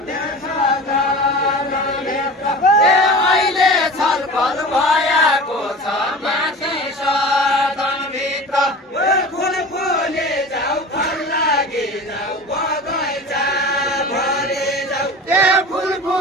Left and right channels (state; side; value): normal; both; correlation 0.35